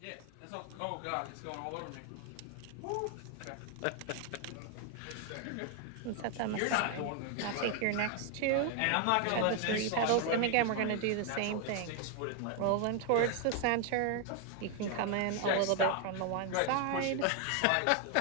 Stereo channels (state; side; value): different; both; correlation 0.00